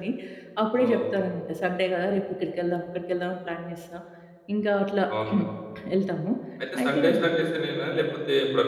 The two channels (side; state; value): both; identical; correlation 1.00